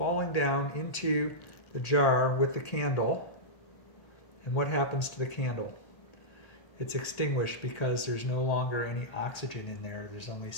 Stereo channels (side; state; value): right; late; 1.8 ms